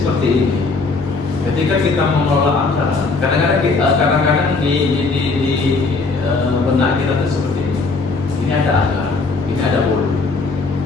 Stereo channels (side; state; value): right; quieter; 4.0 dB